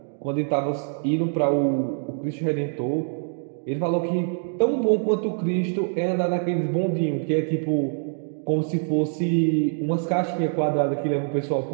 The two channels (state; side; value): silent; left; digital silence